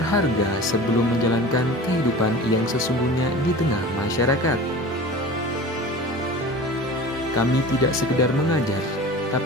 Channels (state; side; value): normal; both; correlation 0.36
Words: sebelum menjalankan kehidupan yang sesungguhnya di tengah masyarakat. Kami tidak sekedar mengajar,